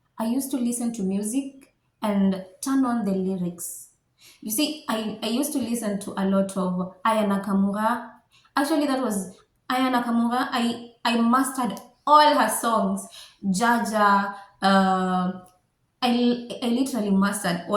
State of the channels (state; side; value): identical; both; correlation 1.00